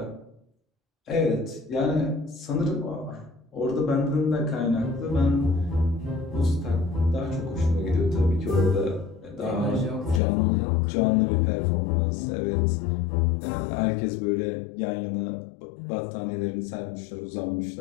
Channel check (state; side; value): drops out; right; at 10.2 s